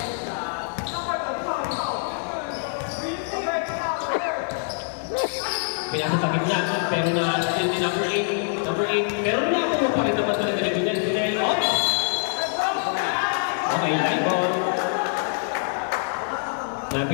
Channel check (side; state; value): right; silent; digital silence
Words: Pinasa sa gitna, pero na-assist ni number 8. Number 8, pero nakakuha pa rin naman talaga ni Junel. Okay, line ball.